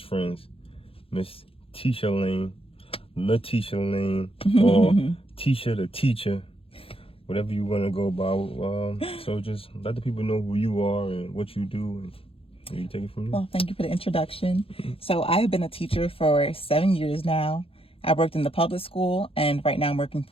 friends, Miss Tisha Lane, Tisha Lane, or Tisha the Teacher, whatever you want to go by. So just let the people know who you are and what you do, and you take it from there. Well, thank you for the introduction. So I have been a teacher for 7 years now. I worked in the public school, and right now I'm working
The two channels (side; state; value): right; late; 0.27 ms